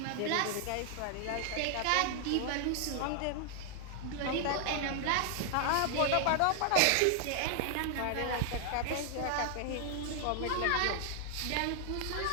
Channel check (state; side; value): different; both; correlation 0.00